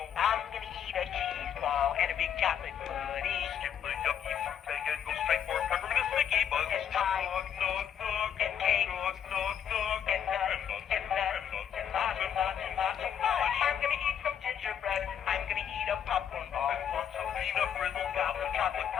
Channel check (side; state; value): right; quieter; 8.8 dB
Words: I'm gonna eat a cheese ball and a big chocolate pudding. Skip the yucky fruit bag and go straight for peppermint sticky buns. And pie. Nog, nog, nog. And cake. Nog, nog, nog. And nuts. And nuts. And lots and lots and lots of fudge. I'm gonna eat some gingerbread. I'm gonna eat a popcorn ball. And lots of peanut brittle gobs of chocolate